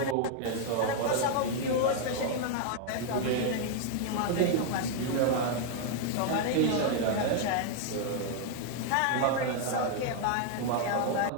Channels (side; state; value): both; different; correlation 0.00